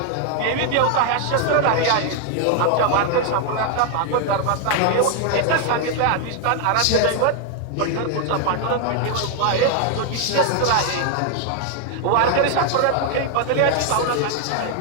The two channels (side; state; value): both; different; correlation 0.00